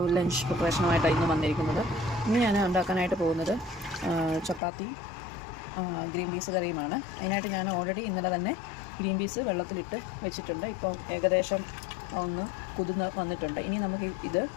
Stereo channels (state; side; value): drops out; right; at 4.6 s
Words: ലഞ്ച് പ്രിപ്പറേഷനുമായിട്ടാണ് ഇന്ന് വന്നിരിക്കുന്നത്. ഇന്ന് ഞാൻ ഉണ്ടാക്കാനായിട്ട് പോകുന്നത് ചപ്പാത്തി ഗ്രീൻ പീസ് കറിയുമാണ്. അതിനായിട്ട് ഞാൻ ഓൾറെഡി ഇന്നലെ തന്നെ ഗ്രീൻ പീസ് വെള്ളത്തിലിട്ട് വെച്ചിട്ടുണ്ട്. ഇപ്പം ഏകദേശം ഒന്ന് കുതിർന്ന് വന്നിട്ടുണ്ട്. ഇനി നമുക്ക് ഇത്